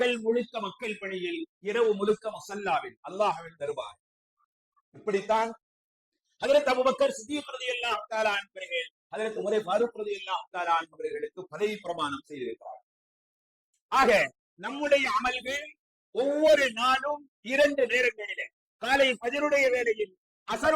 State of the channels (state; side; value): identical; both; correlation 1.00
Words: முழுக்க மக்கள் பணியில், இரவு முழுக்க முஸல்லாவில் அல்லாஹ்வின் தர்பார். இப்படித்தான் ஹஜ்ரத் அபூபக்கர் சித்திக் ரலியல்லாஹு தஆலா அவர்கள் ஹஜ்ரத் உமர் ஃபாரூக் ரலியல்லாஹு தஆலா அவர்களுக்கு பதவி பிரமாணம் செய்திருக்கிறார். ஆக நம்முடைய அமல்கள் ஒவ்வொரு நாளும் 2 நேரங்களிலே, காலை ஃபஜ்ருடைய வேளையில்,